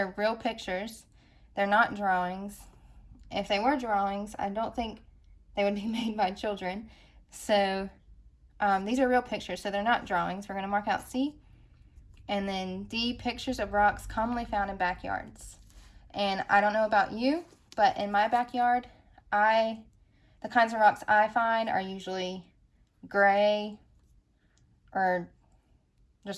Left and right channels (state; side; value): identical; both; correlation 1.00